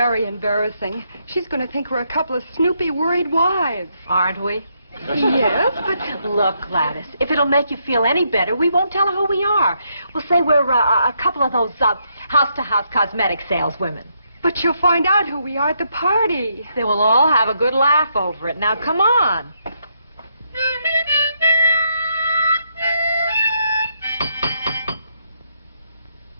embarrassing. She's going to think we're a couple of snoopy, worried wives. Aren't we? Yes, but... Look, Gladys, if it'll make you feel any better, we won't tell her who we are. We'll say we're a couple of those house-to-house cosmetic saleswomen. But she'll find out who we are at the party. They will all have a good laugh over it. Now, come on.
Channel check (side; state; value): both; inverted; correlation -0.77